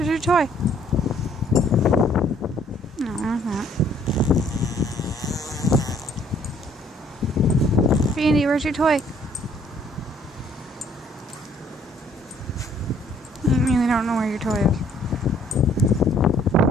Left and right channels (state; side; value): normal; both; correlation 0.62